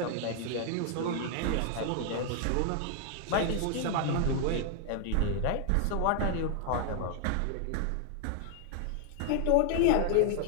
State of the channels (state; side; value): different; both; correlation 0.00